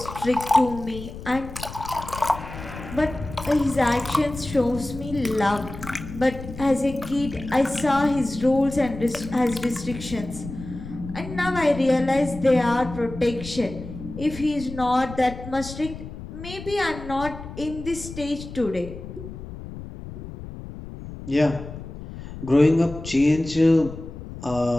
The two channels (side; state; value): left; noise; rumble, 12 dB below the sound